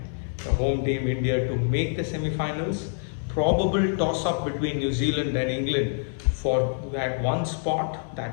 the home team India to make the semi-finals. Probable toss-up between New Zealand and England for that one spot,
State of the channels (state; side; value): silent; right; digital silence